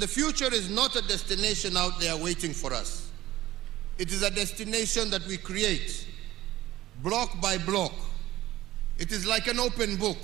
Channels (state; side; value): quieter; left; 15.6 dB